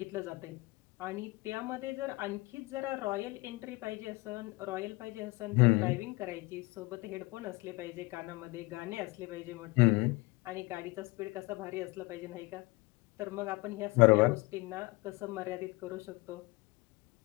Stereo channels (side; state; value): right; quieter; 24.0 dB